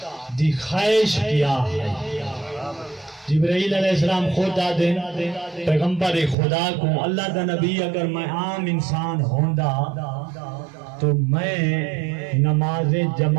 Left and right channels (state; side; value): drops out; left; at 6.4 s